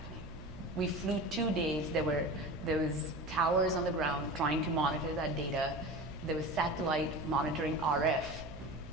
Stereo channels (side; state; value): right; noise; hum, 15 dB below the sound